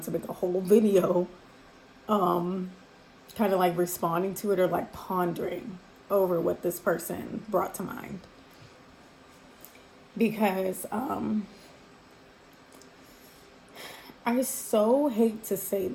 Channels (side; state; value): both; identical; correlation 1.00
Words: to make a whole video kind of like responding to it or like pondering over what this person brought to mind. Because I so hate to say